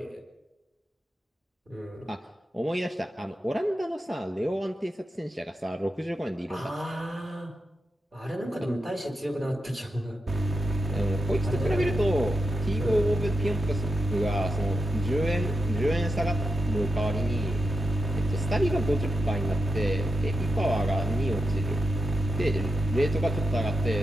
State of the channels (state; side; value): normal; both; correlation 0.88